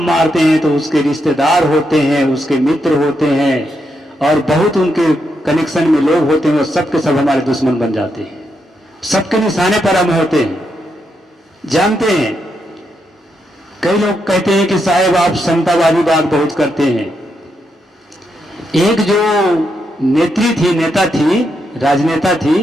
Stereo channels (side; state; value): both; normal; correlation 0.82